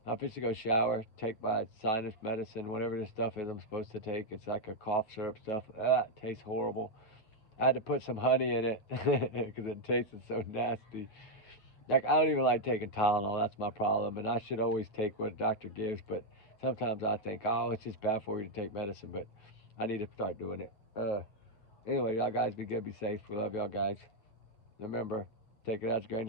I'm supposed to go shower, take my sinus medicine, whatever this stuff is I'm supposed to take. It's like a cough syrup stuff. It tastes horrible. I had to put some honey in it because it tasted so nasty. Like, I don't even like taking Tylenol. That's my problem. And I should always take what a doctor gives. But sometimes I think, oh, it's just bad for you to take medicine. But I need to start doing it. Anyway, y'all guys be good, be safe. We love y'all guys. Remember, take it as a grain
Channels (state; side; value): late; right; 9.1 ms